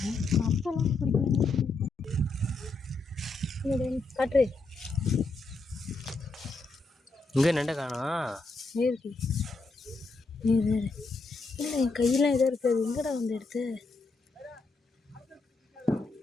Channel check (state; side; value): quieter; right; 3.6 dB